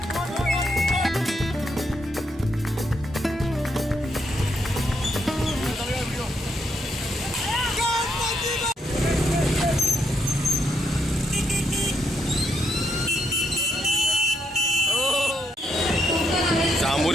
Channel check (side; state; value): both; normal; correlation 0.77